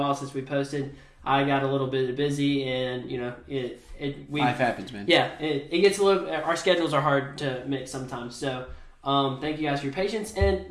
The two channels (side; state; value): both; identical; correlation 1.00